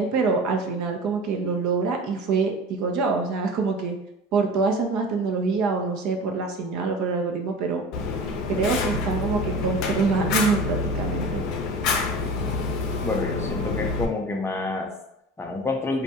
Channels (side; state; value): both; normal; correlation 0.35